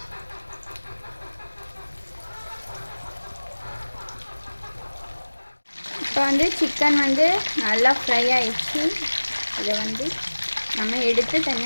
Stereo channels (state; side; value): inverted; both; correlation -1.00